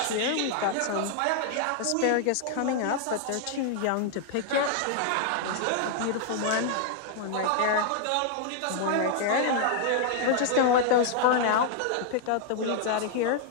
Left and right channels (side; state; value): both; different; correlation 0.00